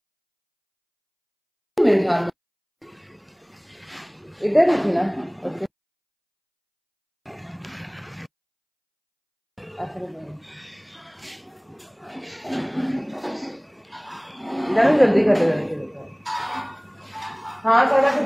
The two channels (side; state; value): both; identical; correlation 1.00